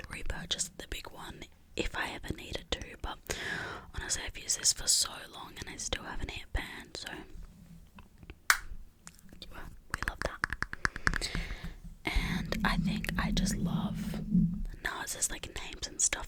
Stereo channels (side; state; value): both; identical; correlation 1.00